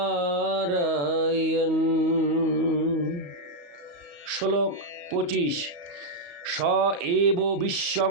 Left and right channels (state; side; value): late; left; 35 ms